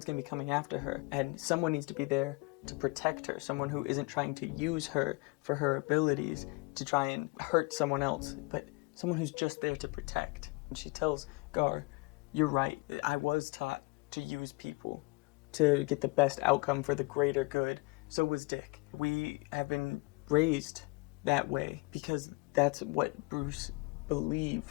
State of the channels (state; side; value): quieter; right; 27.5 dB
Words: going to be coming after her. And someone needs to be there to protect her. Someone who isn't trying to use her for her abilities to try and hurt someone else, but someone who's just there to protect. And she tells Gar, you're right, I was taught to use people to get the best outcome for the greater good. So was Dick. We have been raised that way because that's what Bruce